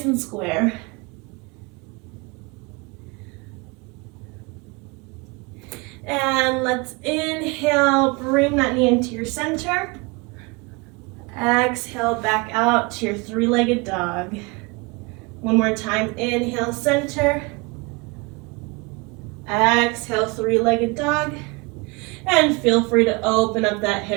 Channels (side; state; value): left; quieter; 27.2 dB